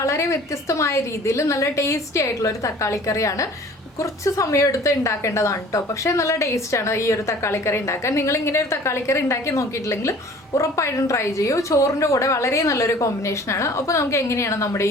വ്യത്യസ്തമായ രീതിയിൽ നല്ല ടേസ്റ്റി ആയിട്ടുള്ള ഒരു തക്കാളി കറിയാണ്. കുറച്ച് സമയമെടുത്ത് ഉണ്ടാക്കേണ്ടതാണ് കേട്ടോ, പക്ഷേ നല്ല ടേസ്റ്റാണ് ഈ ഒരു തക്കാളി കറി ഉണ്ടാക്കാൻ. നിങ്ങൾ ഇങ്ങനെ ഒരു തക്കാളി കറി ഉണ്ടാക്കി നോക്കിയിട്ടില്ലെങ്കിൽ ഉറപ്പായിട്ടും ട്രൈ ചെയ്യൂ. ചോറിൻ്റെ കൂടെ വളരെ നല്ലൊരു കോമ്പിനേഷനാണ്. അപ്പോൾ നമുക്ക് എങ്ങനെയാണ് നമ്മുടെ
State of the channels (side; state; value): both; normal; correlation 0.48